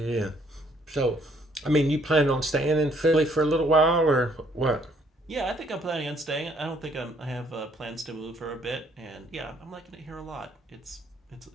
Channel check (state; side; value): normal; both; correlation 0.65